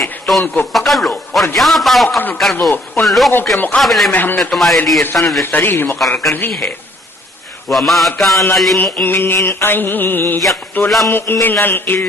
تو ان کو پکڑ لو اور جہاں پاؤ قتل کر دو. ان لوگوں کے مقابلے میں ہم نے تمہارے لیے سند صریح مقرر کر دی ہے. وما كان لمؤمن أن يقتل مؤمنا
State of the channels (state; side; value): normal; both; correlation 0.62